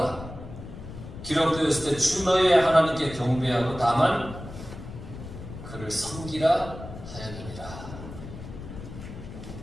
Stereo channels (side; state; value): left; noise; rumble, 12 dB below the sound